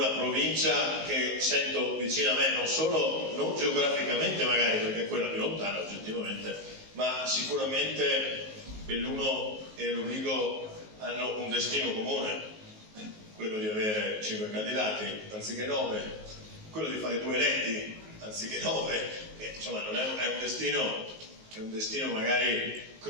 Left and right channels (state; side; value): late; left; 19 ms